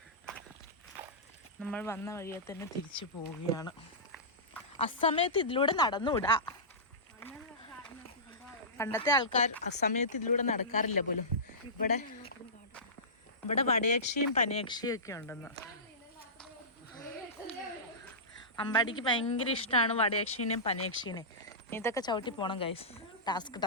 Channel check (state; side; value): normal; both; correlation -0.19